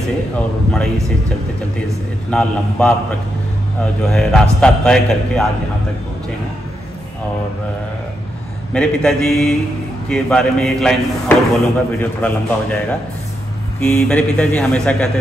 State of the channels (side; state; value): both; normal; correlation 0.83